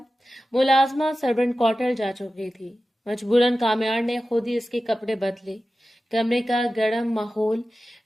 मुलाजमा सर्वेंट क्वार्टर जा चुकी थी। मजबूरन कामयार ने खुद ही इसके कपड़े बदले। कमरे का गर्म माहौल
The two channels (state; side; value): normal; both; correlation 0.94